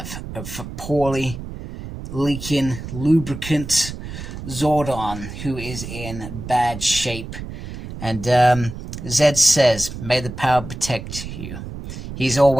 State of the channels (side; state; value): right; noise; rumble, 10 dB below the sound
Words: a poorly leaking lubricant Zordon, who is in bad shape. And Zed says, "May the power protect you." He's